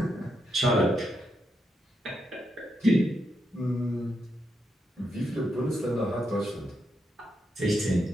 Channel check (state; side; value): normal; both; correlation 0.82